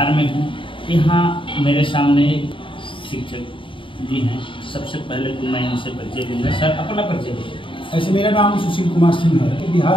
में हूँ। यहाँ मेरे सामने शिक्षक जी हैं। सबसे पहले तो मैं इनसे परिचय दूंगा। सर, अपना परिचय दीजिए। ऐसे मेरा नाम सुशील कुमार सिंह है। बिहार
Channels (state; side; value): late; right; 0.25 ms